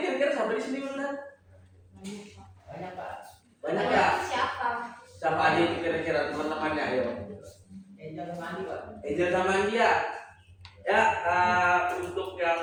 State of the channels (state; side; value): identical; both; correlation 1.00